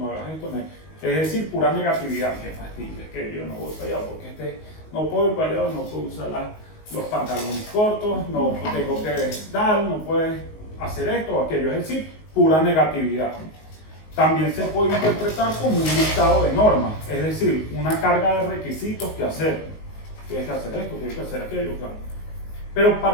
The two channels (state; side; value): late; right; 19 ms